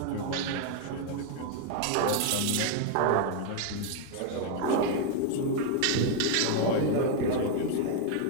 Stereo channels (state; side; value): different; both; correlation 0.01